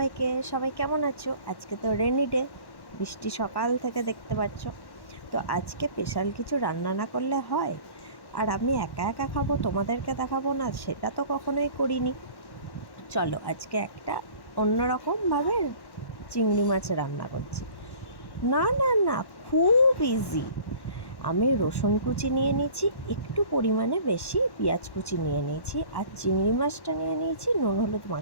সবাই কেমন আছো? আজকে তো রেনি ডে, বৃষ্টি সকাল থেকে দেখতে পাচ্ছ। তো আজকে স্পেশাল কিছু রান্না না করলে হয়? আর আমি একা একা খাবো, তোমাদেরকে দেখাবো না, সেটা তো কখনোই করিনি। চলো আজকে একটা অন্যরকমভাবে চিংড়ি মাছ রান্না করছি। না না না, খুব ইজি। আমি রসুন কুচি নিয়ে নিয়েছি, একটু পরিমাণে বেশি পেঁয়াজ কুচি নিয়ে নিয়েছি, আর চিংড়ি মাছটা নিয়ে নিয়েছি, নুন হলুদ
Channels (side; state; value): right; late; 1.1 ms